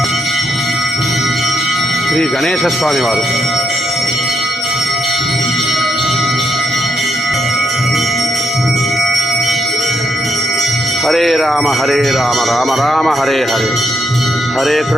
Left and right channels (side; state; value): both; normal; correlation 0.79